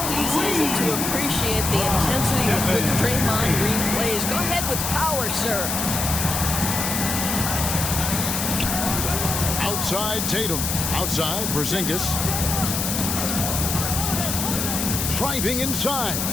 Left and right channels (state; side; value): noise; left; hiss, 1 dB below the sound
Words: easy is it to appreciate the intensity with which Draymond Green plays? Go ahead with power, sir. Outside Tatum. Outside Porzingis. Driving inside.